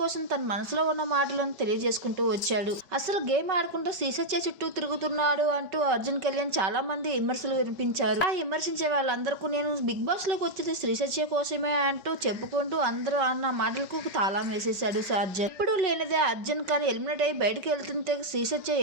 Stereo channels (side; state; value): left; late; 4.9 ms